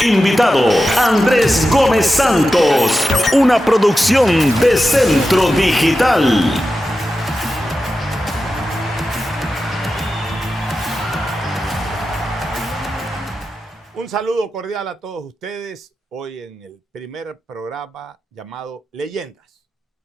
Invitado Andrés Gómez Santos. Una producción de Centro Digital. Un saludo cordial a todos ustedes. Hoy en el primer programa llamado Leyendas.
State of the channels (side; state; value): both; normal; correlation 0.92